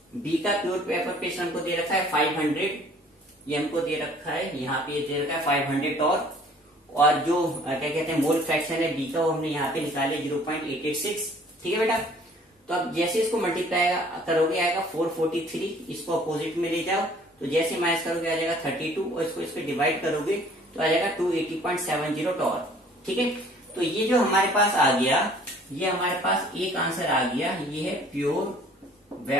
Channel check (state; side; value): normal; both; correlation 0.55